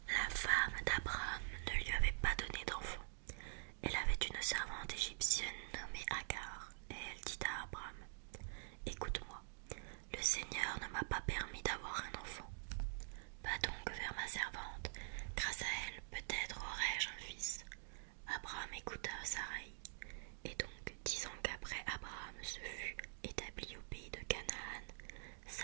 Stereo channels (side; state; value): left; silent; digital silence